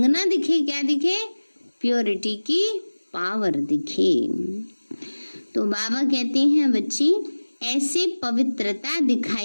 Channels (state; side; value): inverted; both; correlation -1.00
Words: ना दिखे, क्या दिखे? प्योरिटी की पावर दिखे। तो बाबा कहते हैं बच्ची ऐसे पवित्रता